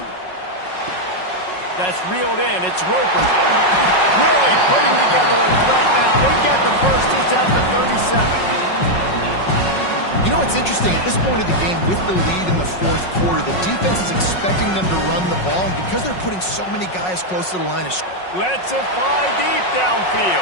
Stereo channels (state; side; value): late; right; 5.5 ms